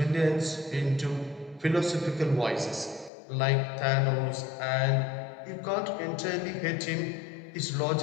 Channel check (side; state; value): right; drops out; at 3.1 s